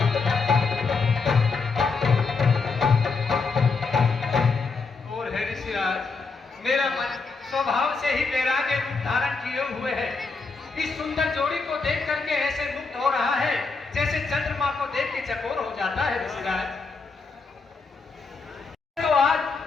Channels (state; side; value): quieter; right; 4.4 dB